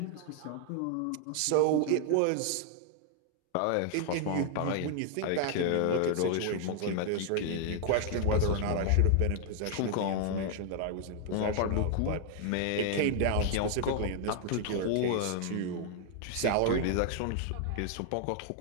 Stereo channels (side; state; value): both; different; correlation 0.00